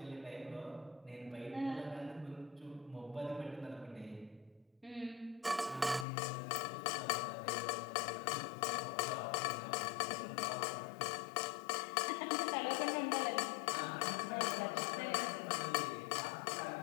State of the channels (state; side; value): drops out; right; at 6.1 s